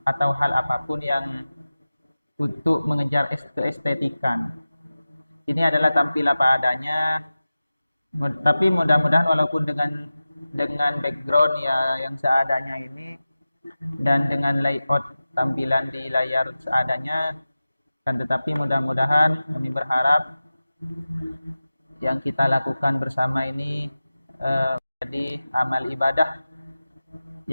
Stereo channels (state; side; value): inverted; both; correlation -0.96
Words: atau hal apapun yang untuk mengejar keestetikan. Ini adalah tampil apa adanya, tapi mudah-mudahan walaupun dengan background ya yang seadanya ini dan dengan layout tampilan di layar seadanya, kan tetapi mudah-mudahan kami berharap yang kita lakukan bersama ini menjadi amal ibadah